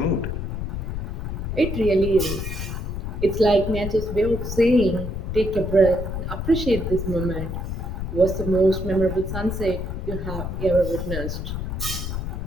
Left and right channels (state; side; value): noise; left; rumble, 4 dB below the sound